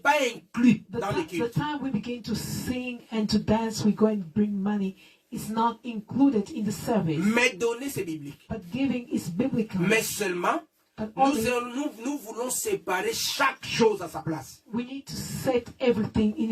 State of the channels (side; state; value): both; identical; correlation 1.00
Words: inclus dans le The culte. time we begin to sing and to dance, we go and bring money. It's not included in the service. Mais donner, c'est biblique. But giving is biblical. Mais seulement, But nous, only nous voulons séparer chaque chose à sa place. we need to set everything in